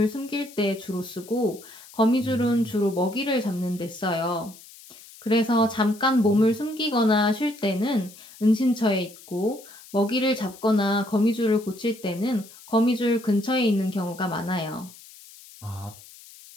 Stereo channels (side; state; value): left; noise; hiss, 20 dB below the sound